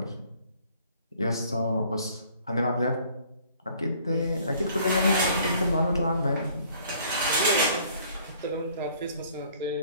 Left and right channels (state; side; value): inverted; both; correlation -0.57